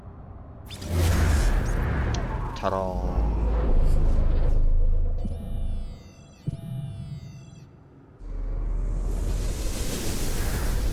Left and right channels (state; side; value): identical; both; correlation 1.00